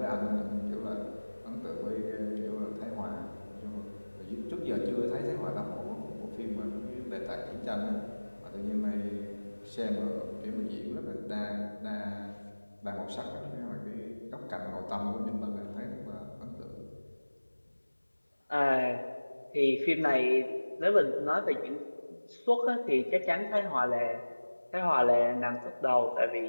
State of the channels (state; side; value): inverted; both; correlation -1.00